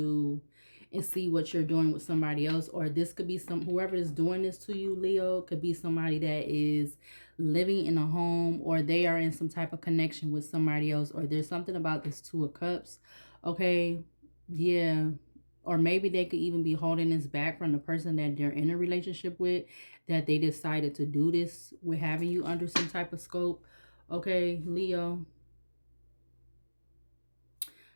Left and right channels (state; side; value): inverted; both; correlation -1.00